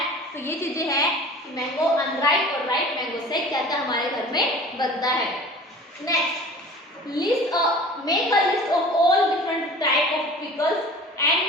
तो ये चीजें हैं कि मैंगो अनराइप और राइप मैंगो से क्या क्या हमारे घर में बनता है। Next, make a list of all different type of pickles and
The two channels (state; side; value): normal; both; correlation 0.42